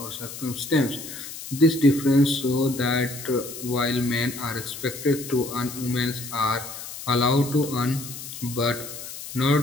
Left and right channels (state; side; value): noise; left; hiss, 11 dB below the sound